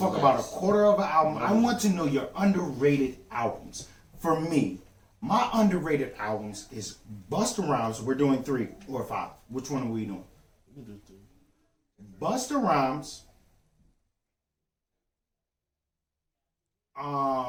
is about a nice. quarter of an album. I want to know your underrated albums. For me, my underrated albums is Busta Rhymes. We're doing 3 or 5. Which one are we doing? You do too. Busta Rhymes.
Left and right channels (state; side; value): identical; both; correlation 1.00